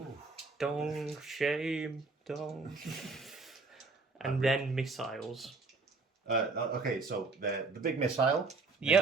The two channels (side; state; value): left; quieter; 4.0 dB